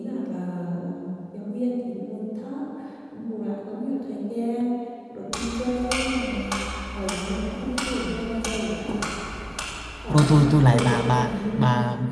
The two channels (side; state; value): both; identical; correlation 1.00